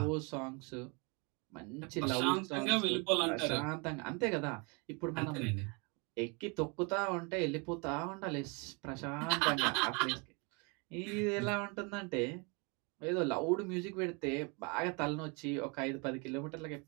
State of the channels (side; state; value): left; quieter; 31.8 dB